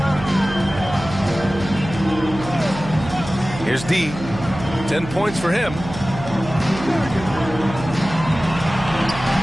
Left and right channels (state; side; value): noise; right; hum, 11 dB below the sound